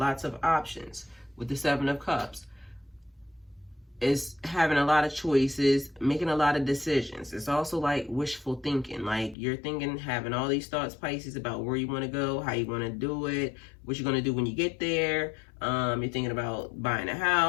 options with the 7 of Cups. Is having a lot of choices, making a lot of decisions. It's also like wishful thinking. Like you're thinking, having all these thoughts, Pisces, about where you want to go, how you want to do it, what you're going to do when you get there. You're thinking about buying a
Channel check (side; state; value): right; drops out; at 9.3 s